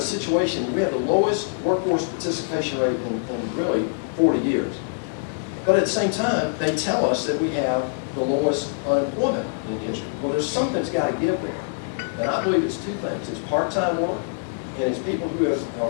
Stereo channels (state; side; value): silent; right; digital silence